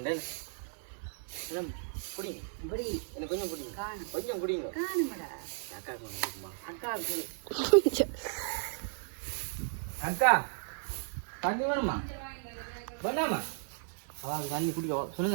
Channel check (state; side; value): silent; left; digital silence